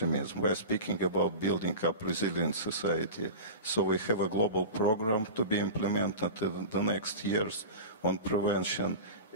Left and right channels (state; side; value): inverted; both; correlation -0.30